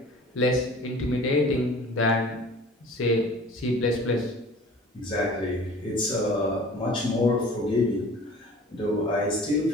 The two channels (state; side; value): normal; both; correlation 0.45